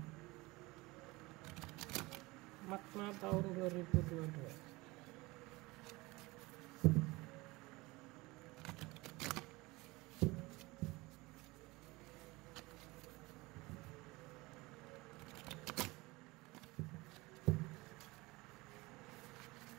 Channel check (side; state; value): left; quieter; 22.3 dB